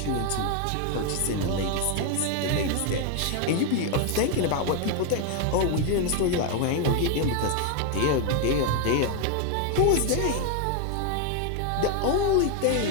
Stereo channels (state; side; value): different; both; correlation 0.01